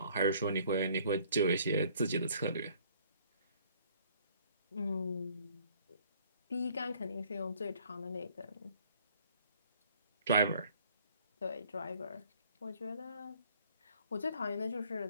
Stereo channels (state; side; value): inverted; both; correlation -0.59